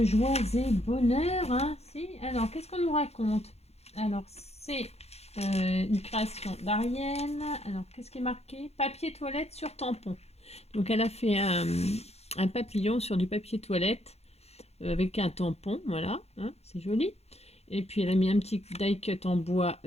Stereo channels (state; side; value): late; right; 0.31 ms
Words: joie et bonheur. Si. Alors qu'est-ce qu'on nous raconte? Alors c'est une création d'Ariel. Alors qu'est-ce qui est marqué? Papier toilette sur tampon. Donc elle a fait un papillon sur du papier toilette avec un tampon, voilà, c'est joli. Et puis elle a mis un petit die cut en bois